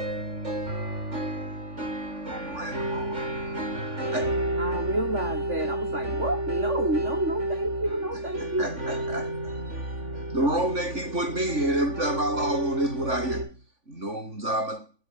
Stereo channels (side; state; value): left; late; 3.5 ms